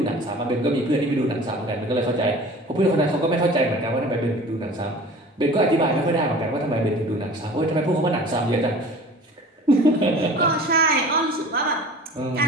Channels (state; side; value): normal; both; correlation 0.42